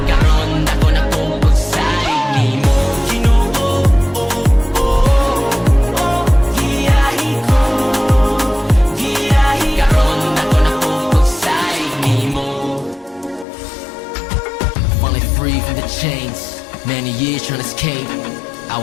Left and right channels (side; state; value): right; drops out; at 13.5 s